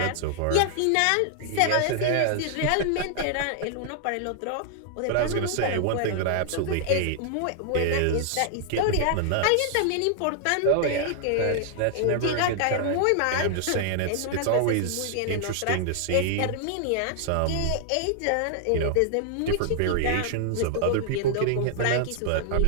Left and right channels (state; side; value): different; both; correlation -0.01